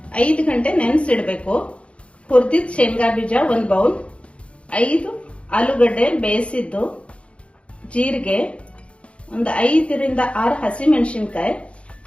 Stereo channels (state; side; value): late; right; 0.060 ms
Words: 5 ಗಂಟೆ ನೆನೆಸಿಡ್ಬೇಕು. ಹುರಿದಿದ್ದ ಶೇಂಗಾ ಬೀಜ 1 ಬೌಲ್, 5 ಆಲೂಗಡ್ಡೆ ಬೇಯಿಸಿದ್ದು, ಜೀರಿಗೆ, ಒಂದು 5 ರಿಂದ 6 ಹಸಿಮೆಣಸಿನಕಾಯಿ,